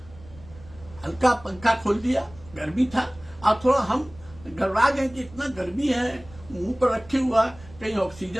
हल्का पंखा खोल दिया, गर्मी था। और थोड़ा हम घबरा गए कि इतना गर्मी है, मुंह पर रखे हुआ, कहीं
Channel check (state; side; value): noise; right; rumble, 21 dB below the sound